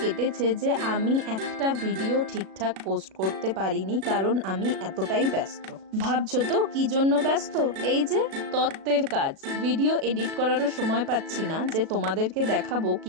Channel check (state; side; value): late; left; 37 ms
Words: যে আমি একটা ভিডিও ঠিকঠাক পোস্ট করতে পারিনি, কারণ আমি এতটাই ব্যস্ত। ভাবছো তো কি জন্য ব্যস্ত? এই যে তত্ত্বের কাজ, ভিডিও এডিট করারও সময় পাচ্ছি না যে তোমাদেরকে দেখাবো